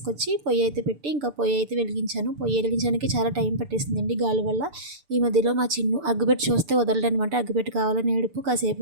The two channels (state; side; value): late; left; 6.8 ms